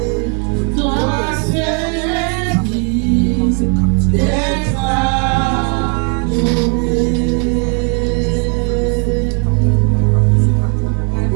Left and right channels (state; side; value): quieter; left; 39.6 dB